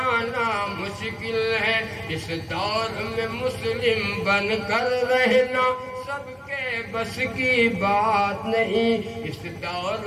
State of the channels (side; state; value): both; identical; correlation 1.00